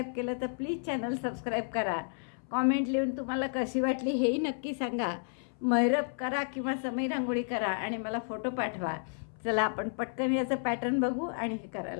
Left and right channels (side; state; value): right; silent; 57 dB below the other